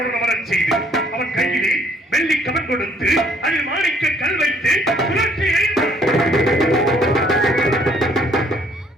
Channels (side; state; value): both; normal; correlation 0.63